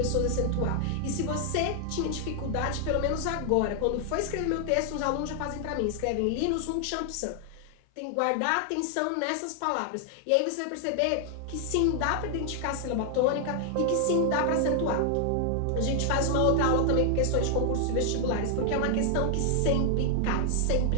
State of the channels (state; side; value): different; both; correlation 0.00